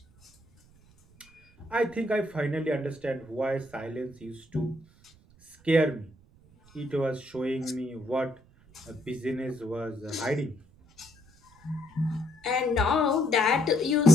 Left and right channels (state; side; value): noise; right; rumble, 28 dB below the sound